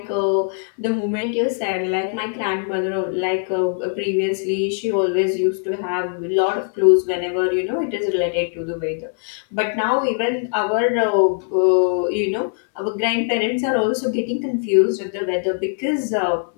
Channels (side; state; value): right; silent; 58 dB below the other